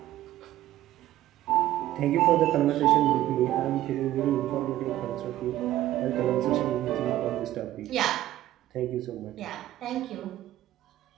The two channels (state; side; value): quieter; left; 14.1 dB